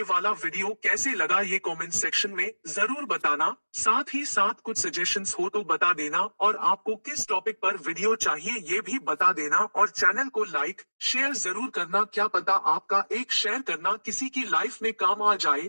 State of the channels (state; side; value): inverted; both; correlation -1.00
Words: वाला वीडियो कैसे लगा ये कमेंट सेक्शन में जरूर बताना। साथ ही साथ कुछ सजेशंस हो तो बता देना, और आपको किस टॉपिक पर वीडियो चाहिए ये भी बता देना। और चैनल को लाइक शेयर जरूर करना, क्या पता आपका एक शेयर करना किसी की लाइफ में काम आ